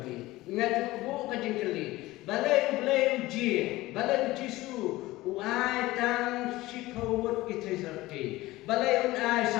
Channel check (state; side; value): quieter; right; 18.5 dB